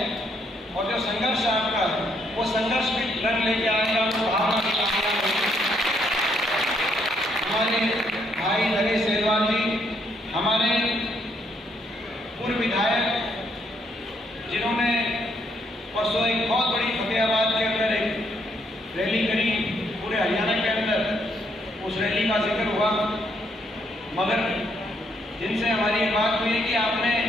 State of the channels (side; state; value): both; normal; correlation 0.72